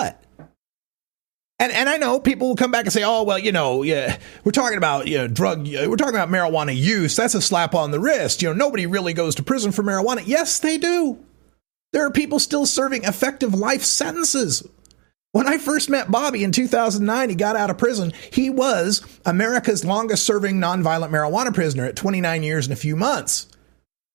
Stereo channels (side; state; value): left; quieter; 33.5 dB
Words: And I know people will come back and say, oh, well, yeah, we're talking about, we're talking about marijuana use. That's a slap on the wrist. Nobody really goes to prison for marijuana. Yes, they do. There are people still serving effective life sentences. When I first met Bobby in 2009, he got out of prison. He was America's longest serving nonviolent marijuana prisoner at 29 years and a few months.